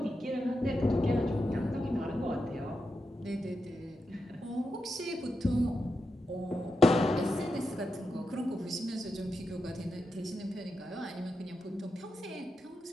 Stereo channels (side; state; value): both; normal; correlation 0.87